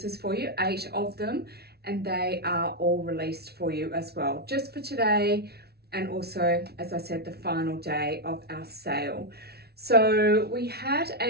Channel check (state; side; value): late; left; 0.46 ms